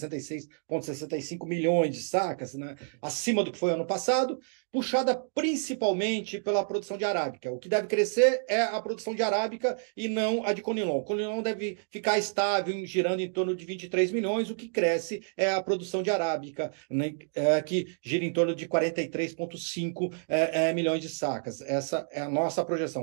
milhões de sacas, né? Acima do que foi ano passado, puxada principalmente pela produção de arábica. O que deve crescer é a produção de arábica e não a de conilon. O conilon deve ficar estável, girando em torno de 23 milhões, o que cresce é a produção de arábica, né, que gira em torno de 43,5 milhões de sacas. Essa é a nossa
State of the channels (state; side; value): silent; left; digital silence